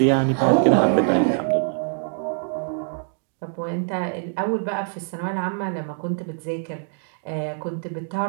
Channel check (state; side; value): silent; left; 63 dB below the other